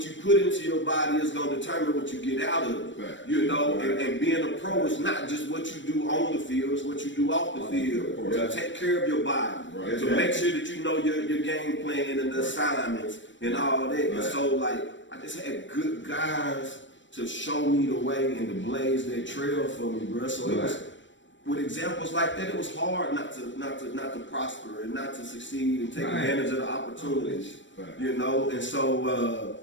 you put into your body is going to determine what you get out of it. You know, and being a pro is not just what you do on the field, it's what you do off the field. To take care of your body, to make sure that you know your game plan and the assignments and all that. And so, like, I just had good guys to show me the way and to blaze that trail for me, bro. So it was, with examples like that, it was hard not to prosper and not to succeed and take advantage of the opportunities. You know, and so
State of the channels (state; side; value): late; right; 0.54 ms